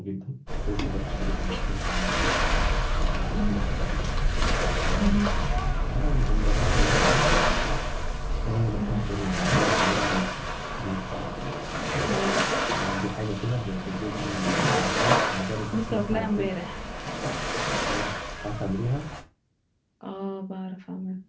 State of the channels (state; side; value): identical; both; correlation 1.00